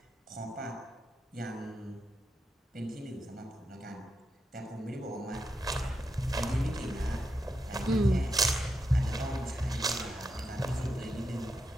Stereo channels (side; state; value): both; normal; correlation 0.85